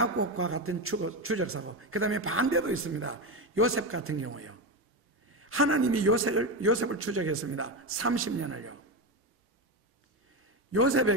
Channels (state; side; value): normal; both; correlation 0.15